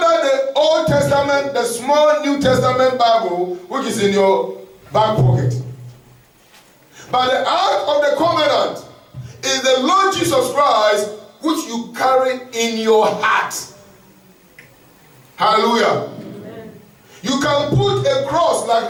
the Old Testament, the small New Testament Bible, which is in your back pocket. But the Ark of the Covenant is the Lord Jesus Christ, which you carry in your heart. Hallelujah. Amen. You can put a cross like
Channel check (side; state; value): both; identical; correlation 1.00